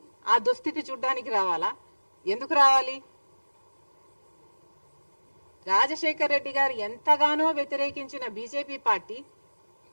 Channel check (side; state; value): both; inverted; correlation -1.00